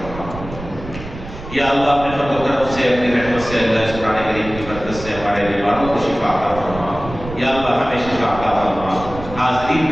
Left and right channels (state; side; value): noise; right; rumble, 12 dB below the sound